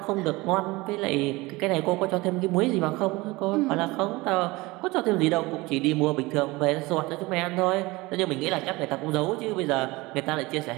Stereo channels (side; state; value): left; quieter; 21.9 dB